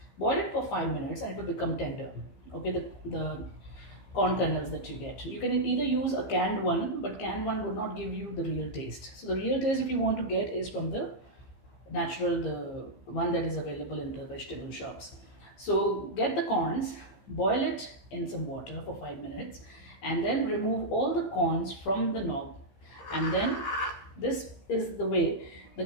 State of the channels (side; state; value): right; late; 15 ms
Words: Boil it for 5 minutes and it will become tender. Okay, the corn kernels that you get. You can either use a canned one, but canned one would not give you the real taste. So the real taste, if you want to get, is from the natural, the one that is available in the vegetable shops. So get the corns, boil it in some water for 5 minutes, and then remove all the corns from the knob, and then this is the way the